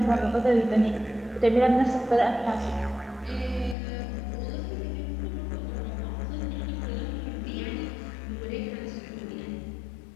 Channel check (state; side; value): drops out; right; at 3.8 s